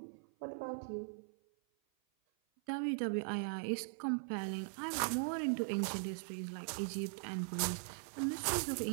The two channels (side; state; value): left; silent; 51 dB below the other